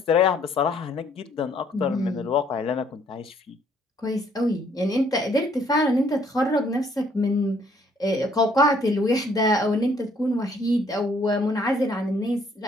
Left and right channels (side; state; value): both; normal; correlation 0.64